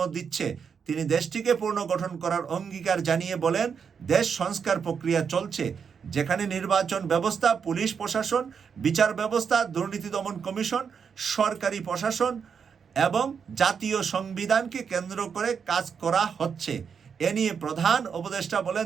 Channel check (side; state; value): left; quieter; 6.6 dB